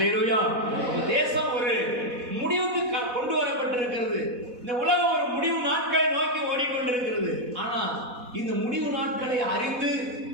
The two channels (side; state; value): left; late; 4.1 ms